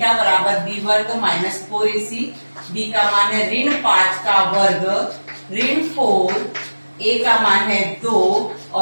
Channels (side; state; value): both; inverted; correlation -1.00